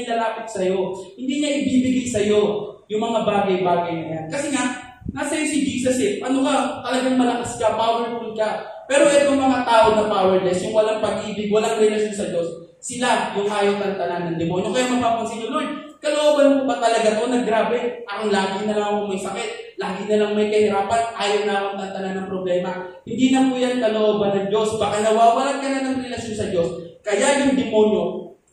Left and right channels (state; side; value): identical; both; correlation 1.00